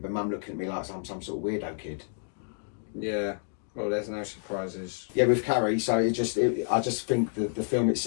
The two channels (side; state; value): right; silent; digital silence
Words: my mum looking at me like I'm some sort of weirdo kid. Yeah. Well, there's no surprises. Yeah, with Carrie, so I just think the film